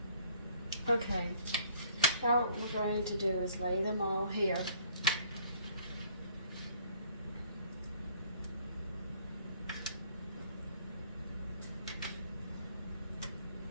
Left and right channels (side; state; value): both; inverted; correlation -0.59